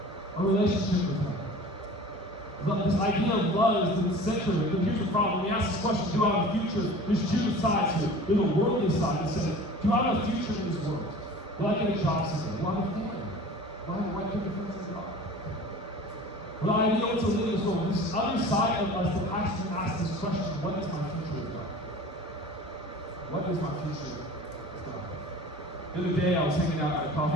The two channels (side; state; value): both; normal; correlation 0.41